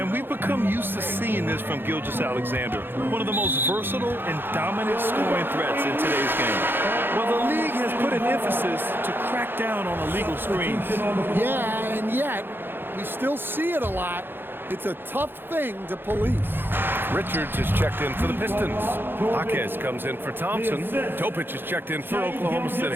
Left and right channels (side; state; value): left; late; 0.10 ms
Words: we've become used to seeing this from Gilgeous-Alexander, one of the most versatile and dominant scoring threats in today's game. Well, the league has put an emphasis to crack down on illegal screens. Yeah, and yet we still see it a lot. It's a tough thing to police. Richards is checked in for the Pistons. Jaquez comes in for Thompson. Topic is checked in for Oklahoma